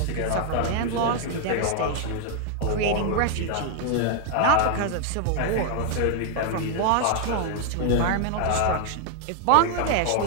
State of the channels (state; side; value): different; both; correlation 0.00